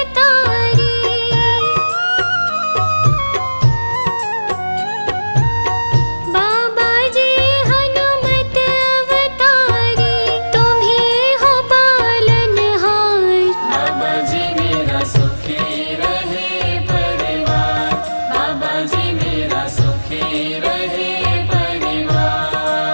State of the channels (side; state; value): both; inverted; correlation -1.00